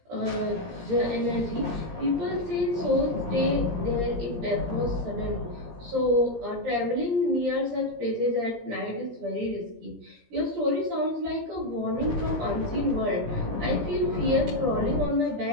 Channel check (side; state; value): left; late; 17 ms